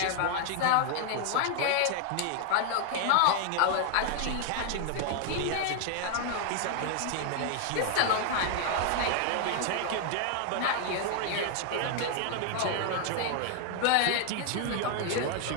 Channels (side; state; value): both; different; correlation 0.00